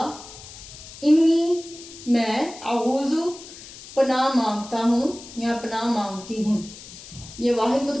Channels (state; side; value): noise; left; hiss, 16 dB below the sound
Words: انی، میں، اعوذ، پناہ مانگتا ہوں یا پناہ مانگتی ہوں۔ یہ واحد